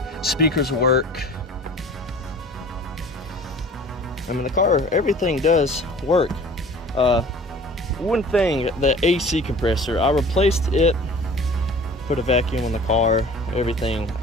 Speakers work. I mean, the car, everything does work. One thing, the AC compressor, I replaced it, put a vacuum on the car, everything.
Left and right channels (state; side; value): normal; both; correlation 0.45